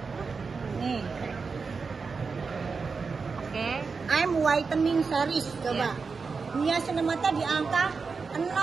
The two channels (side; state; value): left; quieter; 4.9 dB